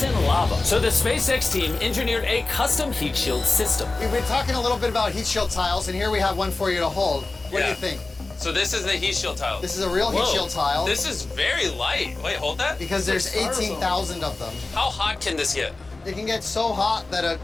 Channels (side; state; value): right; quieter; 3.3 dB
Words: lava. So the SpaceX team engineered a custom heat shield system. We've been talking a little bit about heat shield tiles, and here we have one for you to hold. What do you think? So this is the heat shield tile. This is a real heat shield tile. This is very light. Wait, hold that. Because there's 18,000 of them. How hot can this get? It can get so hot that a